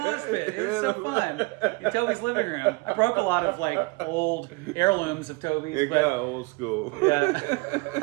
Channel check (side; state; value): left; quieter; 26.7 dB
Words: mosh pit. It was so fun in Toby's living room. I broke a lot of like old heirlooms of Toby's. It got old school. Yeah.